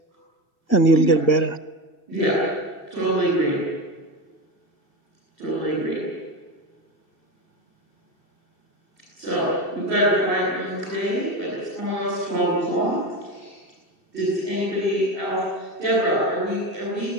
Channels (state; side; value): late; right; 2.7 ms